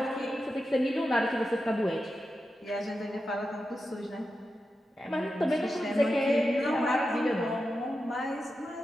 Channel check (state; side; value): normal; both; correlation 0.90